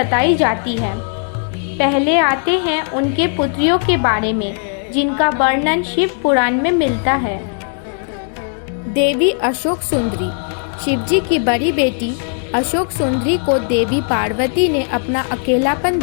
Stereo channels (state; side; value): silent; right; 55 dB below the other